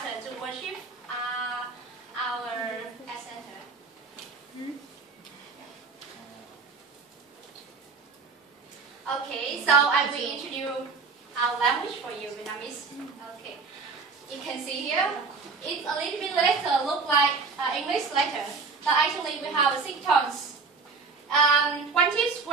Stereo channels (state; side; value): quieter; left; 4.6 dB